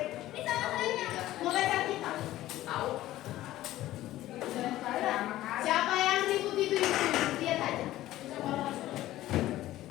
Mau baca kita? Tahu. Siapa yang ribut itu? Lihat aja.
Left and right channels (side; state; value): right; quieter; 15.0 dB